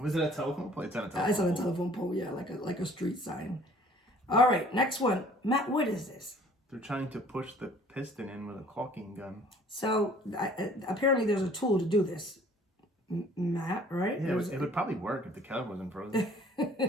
it a telephone pole? It's on a telephone pole. It's on a telephone pole, yeah, like a street sign. All right, next one. Matt, what is this? They're trying to push the piston in with a caulking gun. So apparently there's a tool to do this. Matt, right? Yeah, it would probably work if the caliper wasn't frozen.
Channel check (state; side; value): normal; both; correlation 0.54